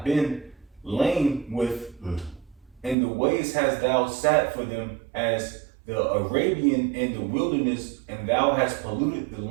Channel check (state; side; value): drops out; left; at 3.0 s